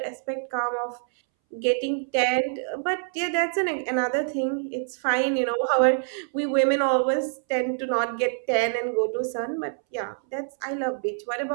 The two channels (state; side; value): silent; left; 61 dB below the other